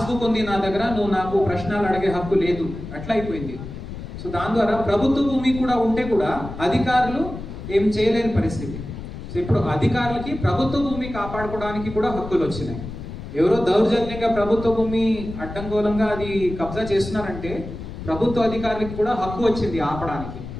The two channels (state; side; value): noise; left; rumble, 10 dB below the sound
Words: ఉంది నా దగ్గర, నువ్వు నాకు ప్రశ్నలు అడిగే హక్కు లేదు, అట్లా అయిపోయింది. సో దాని ద్వారా ప్రభుత్వ భూమి కూడా ఉంటే కూడా అధికారులు ఏం చేయలేని పరిస్థితి. సో ఇప్పుడు అధికారులకి ప్రభుత్వ భూమి కాపాడుకోవడానికి కూడా హక్కులు వచ్చినాయి. ఎవరో దౌర్జన్యంగా ప్రభుత్వ భూమి అడ్డంగోలంగా అది కబ్జా చేస్తున్నారంటే ప్రభుత్వ అధికారులకి కూడా హక్కు వచ్చింది ఆపడానికి.